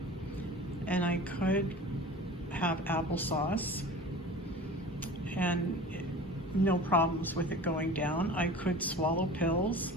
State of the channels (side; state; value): both; normal; correlation 0.39